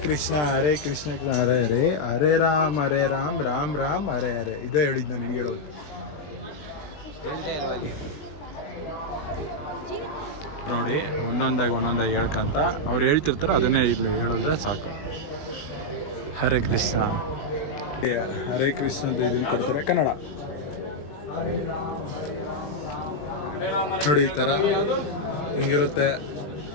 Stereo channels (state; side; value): late; right; 20 ms